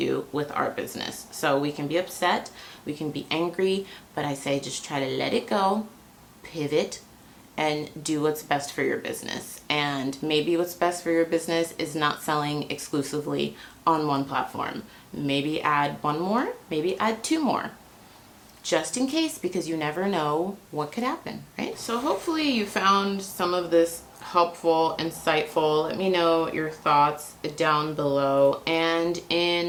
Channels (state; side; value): identical; both; correlation 1.00